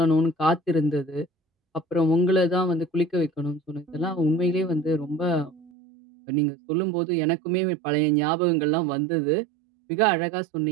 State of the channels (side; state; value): left; drops out; at 5.7 s